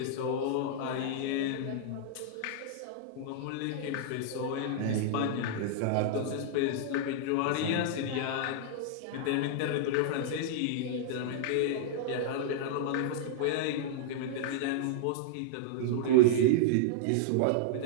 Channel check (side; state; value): both; different; correlation -0.01